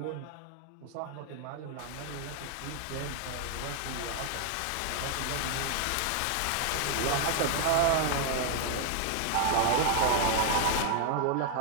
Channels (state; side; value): different; both; correlation 0.00